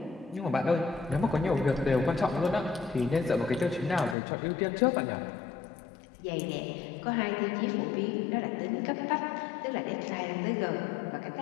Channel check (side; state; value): right; drops out; at 4.2 s